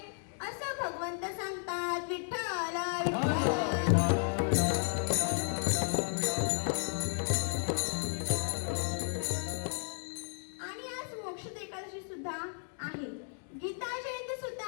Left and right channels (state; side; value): silent; right; 55 dB below the other